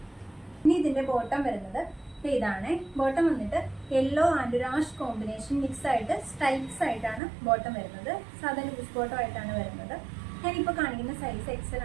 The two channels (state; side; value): drops out; left; at 7.2 s